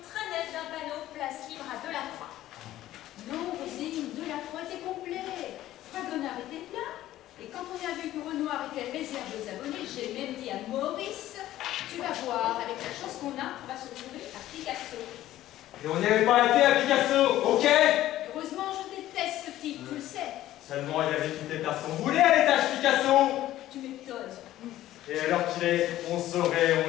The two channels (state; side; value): quieter; right; 14.2 dB